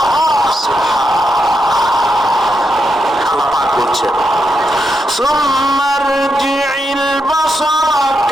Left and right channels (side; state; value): both; normal; correlation 0.83